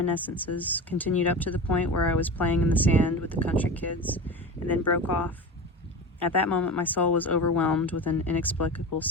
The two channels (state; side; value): normal; both; correlation 0.29